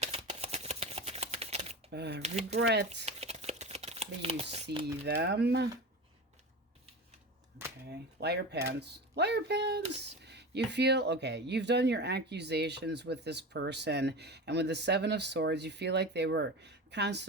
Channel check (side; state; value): both; normal; correlation 0.28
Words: regret. You see them. Okay, liar pants. Liar pants. You feel, okay, you've done your accusations with this person, and with the 7 of Swords, you feel like they were